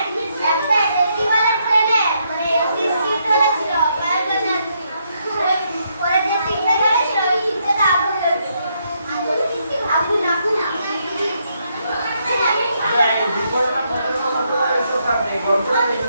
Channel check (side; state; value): both; inverted; correlation -0.76